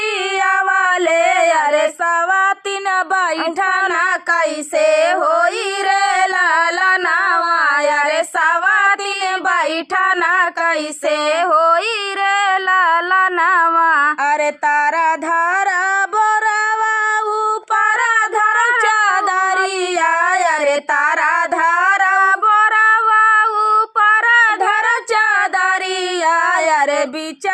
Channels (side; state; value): both; identical; correlation 1.00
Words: वाले अरे सवातिन बैठना कैसे होई रे लाला नावा अरे सवातिन बैठना कैसे होई रे लाला नावा अरे तारा धारा बोरावा ऊपर धर चादरिया अरे तारा धारा बोरावा ऊपर धर चादरिया अरे